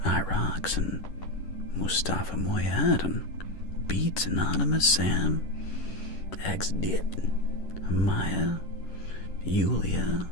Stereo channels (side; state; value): right; late; 11 ms